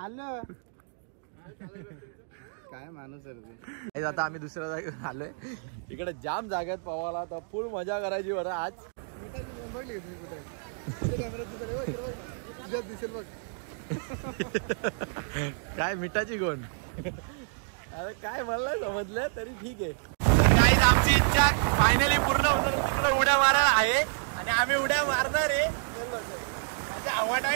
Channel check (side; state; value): left; silent; digital silence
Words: काय माणूस आहे आता आम्ही दुसऱ्या जागेवर आलोय इकडे जाम जागेत पवाला तर फुल मजा करायची बरं आज दिसेल बघ काय मिठाची गोण अरे काय मला समजलं तरी ठीक आहे गाईज आमची इच्छा फायनली पूर्ण होतं तिकडे उड्या मारायला आहे आणि आम्ही उड्या मारणार आहे हवा